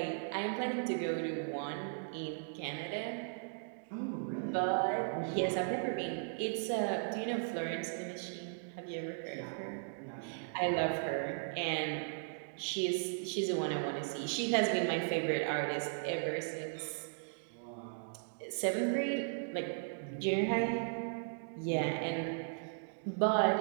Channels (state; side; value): silent; left; digital silence